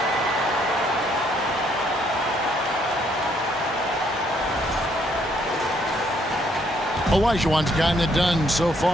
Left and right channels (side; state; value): both; normal; correlation 0.69